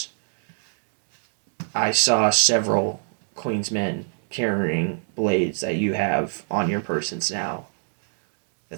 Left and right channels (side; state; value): left; silent; digital silence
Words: I saw several Queen's men carrying blades that you have on your persons now.